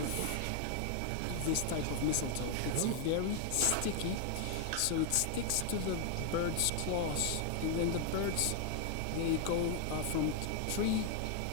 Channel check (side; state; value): both; different; correlation 0.00